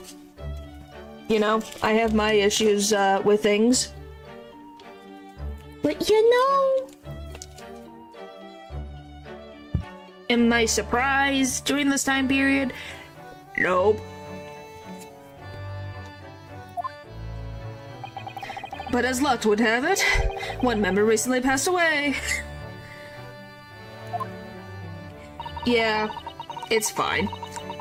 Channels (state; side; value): identical; both; correlation 1.00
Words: You know, I have my issues with things. But you know... Am I surprised during this time period? Nope. But as luck would have it, one member recently passed away. Yeah, it's fine.